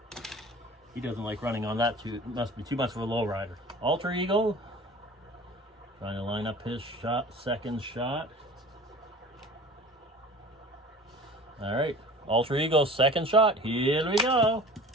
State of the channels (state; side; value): normal; both; correlation 0.42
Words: He doesn't like running on that too. It must be too much of a low rider. Alter ego. Trying to line up his shot, second shot. All right, alter ego, second shot. Here we go.